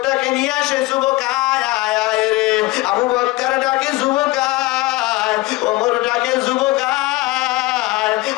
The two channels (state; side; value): quieter; right; 20.6 dB